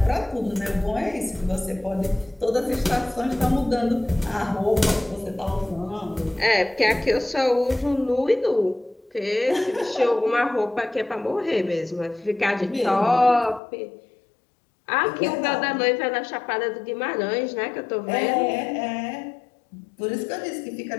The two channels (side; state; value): right; drops out; at 13.6 s